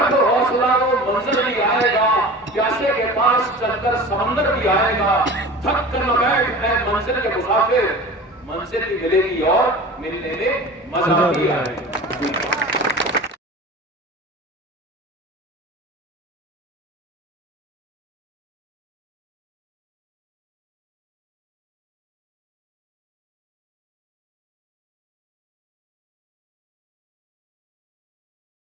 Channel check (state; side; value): normal; both; correlation 0.36